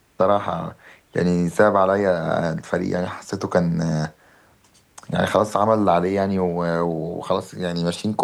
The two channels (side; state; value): both; identical; correlation 1.00